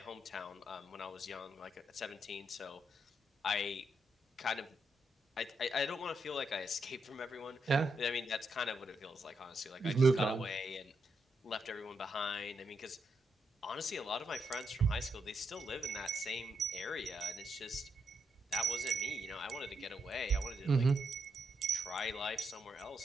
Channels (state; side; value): normal; both; correlation 0.81